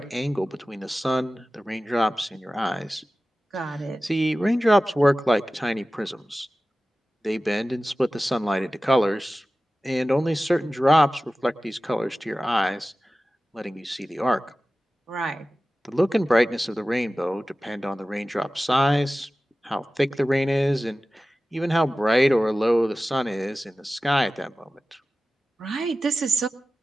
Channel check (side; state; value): both; normal; correlation 0.96